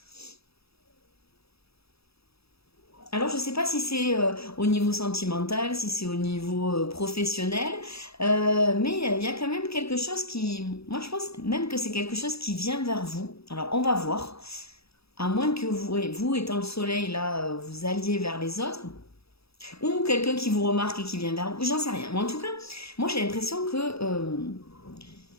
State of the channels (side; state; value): right; late; 0.77 ms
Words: Alors, je ne sais pas si c'est au niveau sentimental, si c'est au niveau professionnel, mais il y a quand même quelque chose qui... Moi, je pense même que c'est quelque chose qui vient vers vous. Alors, on va voir. À moins que vous étant le soleil, là, vous alliez vers les autres. Ou quelqu'un qui vous remarque et qui vient vers vous. J'en sais rien. Mais en tout cas, moi, j'ai l'impression que...